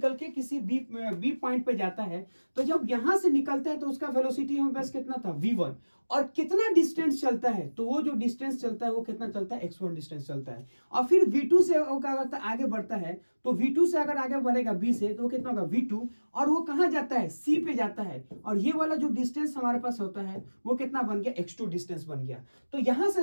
के किसी बी पॉइंट पे जाता है, तो जब यहां से निकलता है तो उसका वेलोसिटी हमारे पास कितना था V1, और कितना डिस्टेंस चलता है, तो वो जो डिस्टेंस चलता है वो कितना चलता है x1 डिस्टेंस चलता है। और फिर V2 से वो क्या करता है आगे बढ़ता है, तो V2 से अगर आगे बढ़ेगा B से तो कितना होगा V2, और वो कहां जाता है C पे जाता है, और ये वाला जो डिस्टेंस हमारे पास होता है वो कितना बन गया x2 डिस्टेंस बन गया। तो यहां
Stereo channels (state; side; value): inverted; both; correlation -1.00